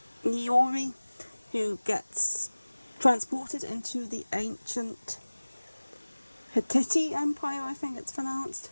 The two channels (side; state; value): both; inverted; correlation -1.00